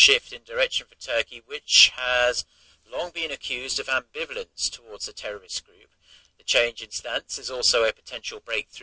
in direction for Turkey, which has long been accused of ambivalence towards the terrorist group. The change in stance is also a potential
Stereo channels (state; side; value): identical; both; correlation 1.00